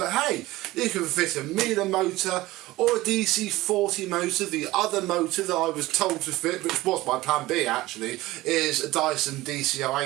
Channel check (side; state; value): left; quieter; 18.3 dB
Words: hey, you can fit a Miele motor or a DC40 motor. The other motor that I was told to fit, which was my plan B actually, is a Dyson